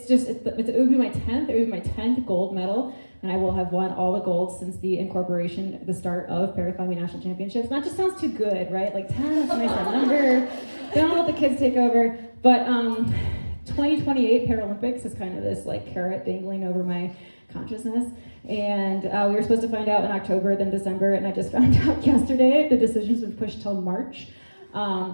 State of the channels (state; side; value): inverted; both; correlation -1.00